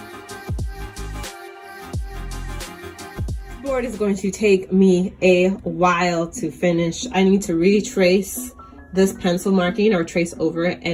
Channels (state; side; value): identical; both; correlation 1.00